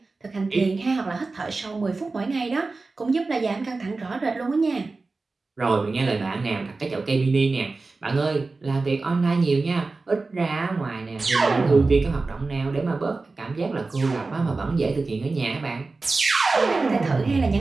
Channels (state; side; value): quieter; left; 3.7 dB